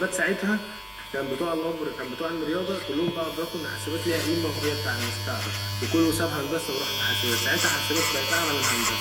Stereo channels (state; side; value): identical; both; correlation 1.00